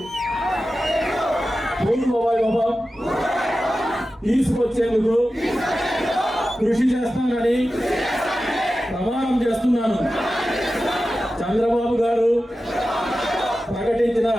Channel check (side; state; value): both; normal; correlation 0.93